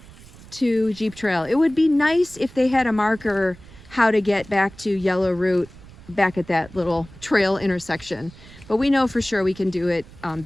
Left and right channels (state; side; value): noise; right; rumble, 20 dB below the sound